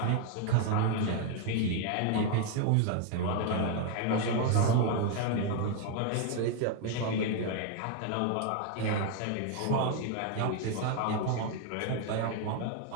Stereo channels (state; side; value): different; both; correlation 0.01